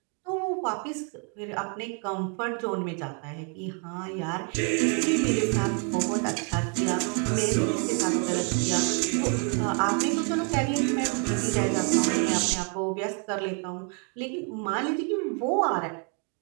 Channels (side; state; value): left; quieter; 38.7 dB